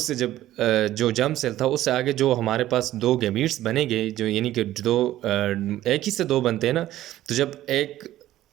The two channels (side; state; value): left; quieter; 14.1 dB